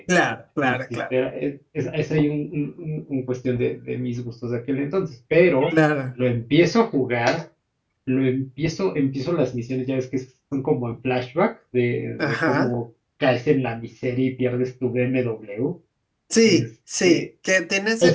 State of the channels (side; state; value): both; identical; correlation 1.00